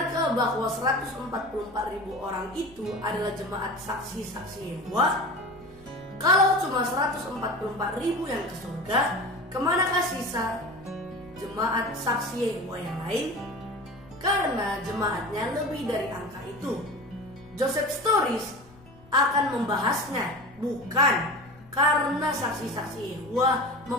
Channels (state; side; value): noise; left; rumble, 24 dB below the sound